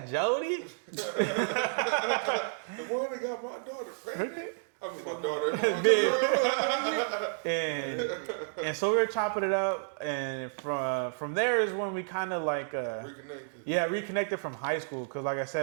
Jody? The one that got my daughter pregnant. I mean, my daughter. and so we were chopping it up, and from there is when we kind of like reconnected from high school. Because like I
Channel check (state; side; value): silent; left; digital silence